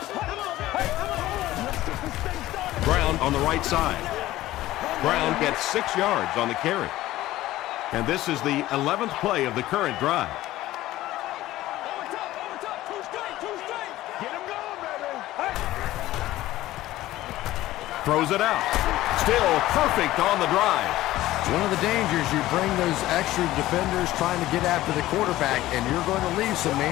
Brown on the right side. Brown gets 6 yards on the carry. And this is the 11th play of the current drive. Throws it out. Still perfect on the drive. One of the dangers, you bring those extra defenders trying to get after the quarterback, and you're going to leave some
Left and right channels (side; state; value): right; quieter; 15.8 dB